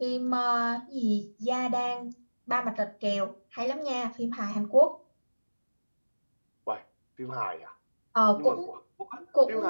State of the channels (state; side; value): inverted; both; correlation -1.00